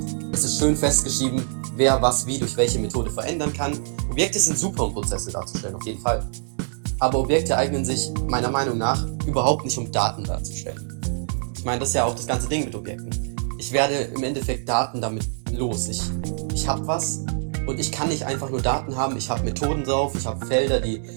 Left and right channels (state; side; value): silent; left; digital silence